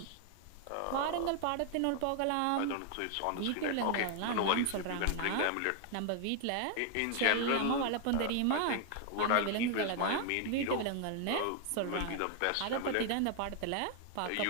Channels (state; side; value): different; both; correlation 0.00